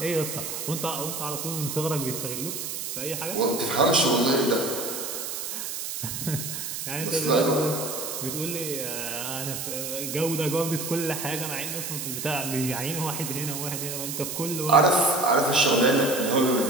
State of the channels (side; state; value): right; noise; hiss, 5 dB below the sound